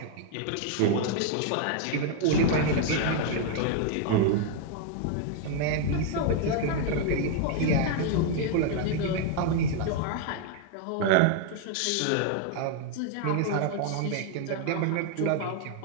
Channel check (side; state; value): both; different; correlation 0.00